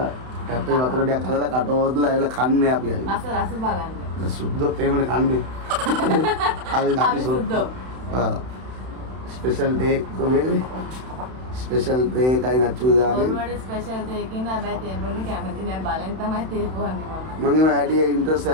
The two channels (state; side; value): late; left; 31 ms